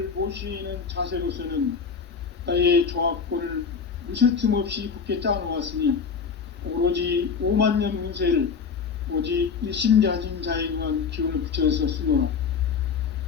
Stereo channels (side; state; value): right; quieter; 5.9 dB